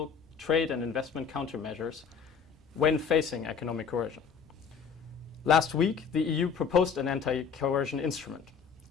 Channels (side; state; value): right; quieter; 6.3 dB